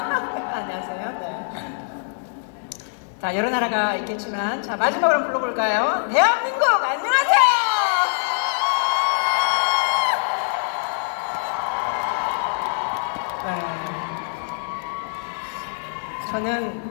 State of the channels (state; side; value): silent; right; digital silence